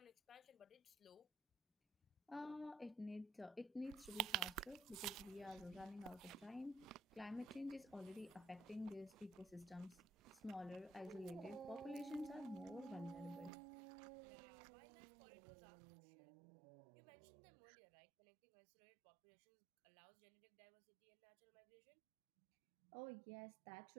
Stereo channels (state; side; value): drops out; left; at 13.5 s